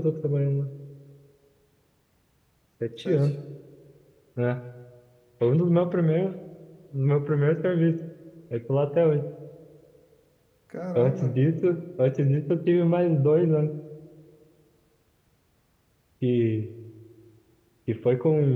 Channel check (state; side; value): identical; both; correlation 1.00